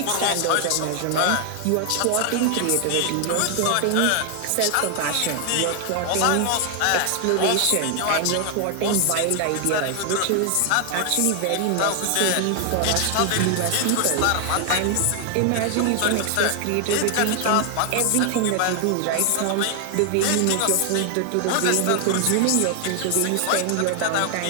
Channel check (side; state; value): both; different; correlation 0.00